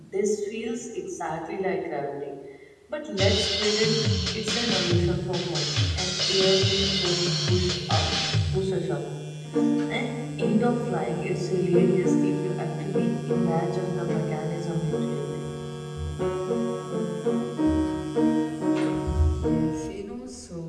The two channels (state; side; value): identical; both; correlation 1.00